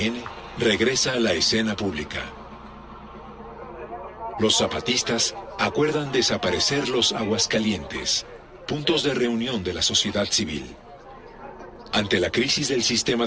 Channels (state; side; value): identical; both; correlation 1.00